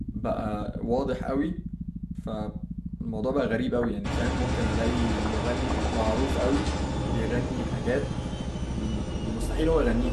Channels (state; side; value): identical; both; correlation 1.00